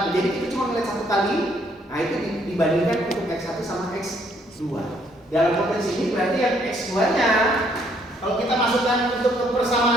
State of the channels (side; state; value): both; normal; correlation 0.67